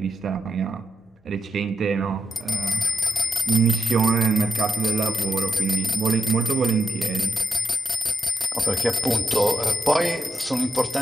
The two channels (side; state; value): both; normal; correlation 0.85